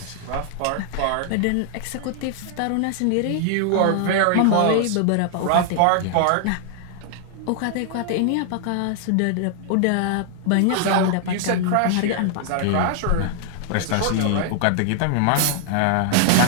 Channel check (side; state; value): both; different; correlation 0.00